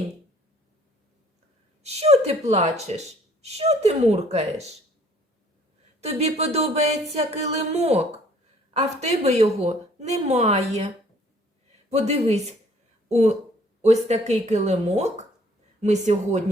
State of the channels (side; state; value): both; normal; correlation 0.58